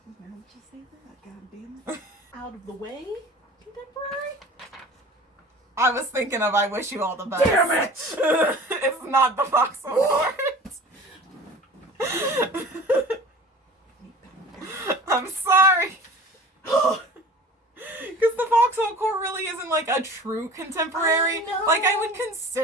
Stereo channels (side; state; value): both; normal; correlation 0.42